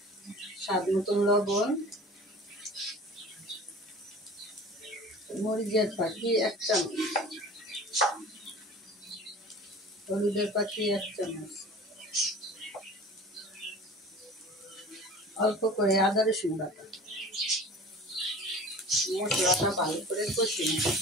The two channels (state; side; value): normal; both; correlation 0.41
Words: স্বাদ মতন লবণ, মরিচের পাখি 1 চামচ, হলুদের পাখি 1 চামচ, অল্প করে আদা রসুন বাটা। মশলাটা ভালো করে কষিয়ে নেব।